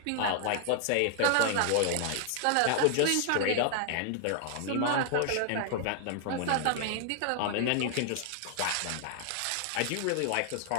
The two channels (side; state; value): both; different; correlation 0.00